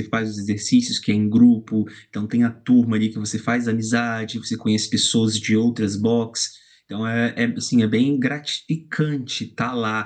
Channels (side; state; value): both; identical; correlation 1.00